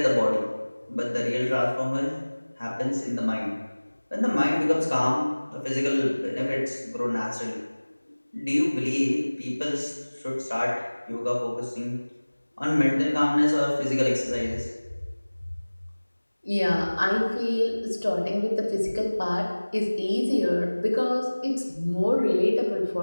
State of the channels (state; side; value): inverted; both; correlation -1.00